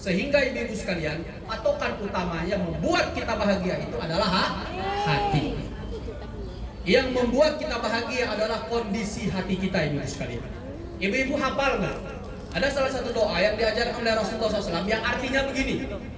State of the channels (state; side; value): identical; both; correlation 1.00